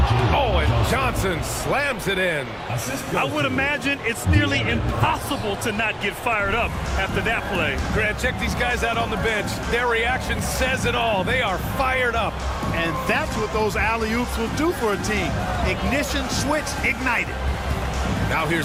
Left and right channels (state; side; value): identical; both; correlation 1.00